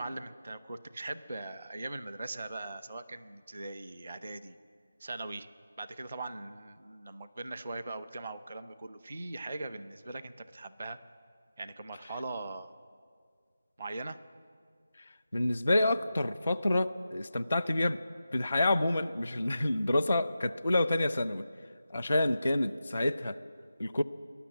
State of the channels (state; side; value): inverted; both; correlation -0.91